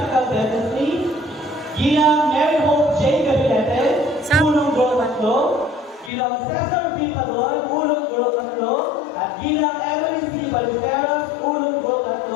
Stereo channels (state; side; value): drops out; right; at 6.1 s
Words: Dentistry, Ginang Mary Hope J. Gabinete, Unong Gulo 3, Ginang Cesar B. Padon, Unong Gulo 3, at Ginang Emily C. Baliferas, Unong Gulo